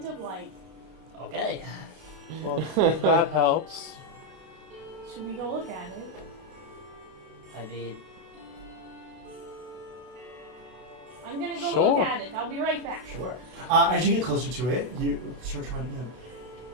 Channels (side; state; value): left; late; 32 ms